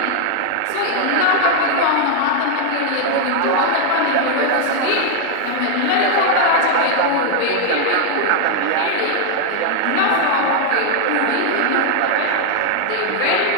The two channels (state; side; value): different; both; correlation 0.00